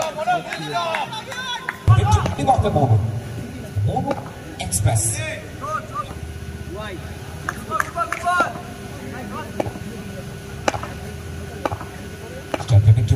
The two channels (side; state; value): both; identical; correlation 1.00